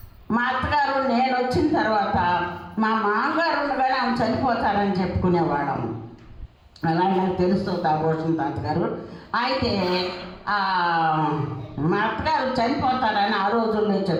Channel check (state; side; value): identical; both; correlation 1.00